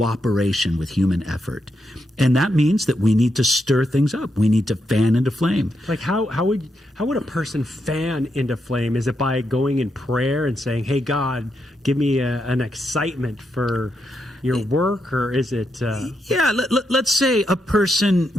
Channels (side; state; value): both; normal; correlation 0.82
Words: with human effort. And that means that we need to stir things up. We need to fan into flame. Like how would a person fan into flame? Is it by going in prayer and saying, hey, God, give me an excitement for your work? Or is it... let's say a person